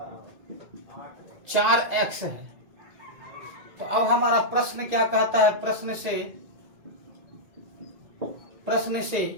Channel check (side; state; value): left; late; 2.0 ms